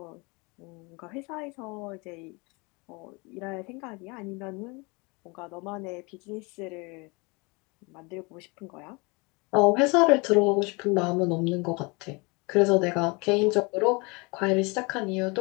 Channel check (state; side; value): quieter; right; 28.2 dB